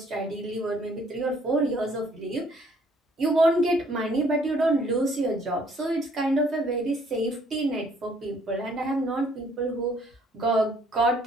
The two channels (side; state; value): both; normal; correlation 0.62